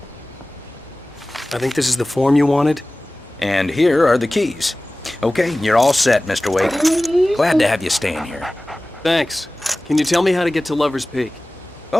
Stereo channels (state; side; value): normal; both; correlation 0.98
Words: I think this is the form you wanted. And here are the keys. Okay, you're all set, Mr. Wake. Glad to have you staying here. Thanks. Can you tell me how to get to Lover's Peak?